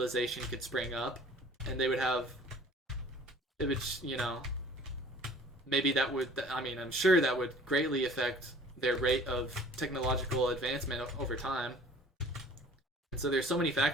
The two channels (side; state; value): both; normal; correlation 0.50